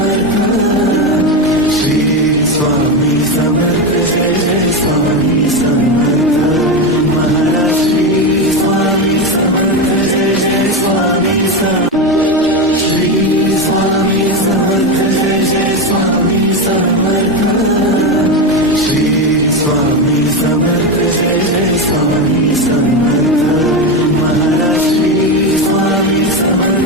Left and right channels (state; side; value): normal; both; correlation 0.14